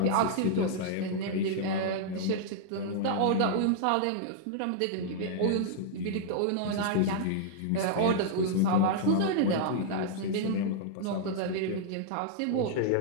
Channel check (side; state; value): both; different; correlation -0.01